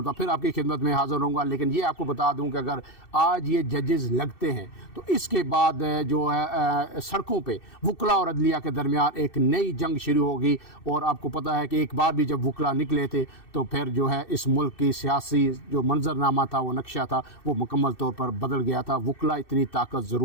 फिर आपकी खिदमत में हाज़िर रहूँगा। लेकिन ये आपको बता दूँ कि अगर आज ये जजेज़ लगते हैं तो इसके बाद जो है सड़कों पर वकला और अदलिया के दरमियान एक नई जंग शुरू होगी। और आपको पता है कि एक बार भी जब वकला निकले थे तो फिर जो है इस मुल्क की सियासी जो मंजरनामा था, वो नक्शा था, वो मुकम्मल तौर पर बदल गया था। वकला इतनी ताकत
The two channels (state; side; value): late; right; 2.6 ms